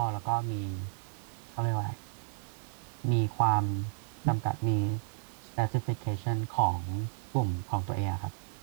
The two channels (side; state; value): left; silent; digital silence